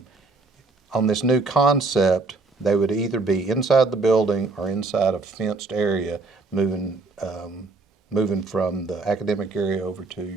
On this new concept, they would either be inside the building or inside a fenced area, moving from the academic area over to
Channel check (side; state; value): left; quieter; 3.7 dB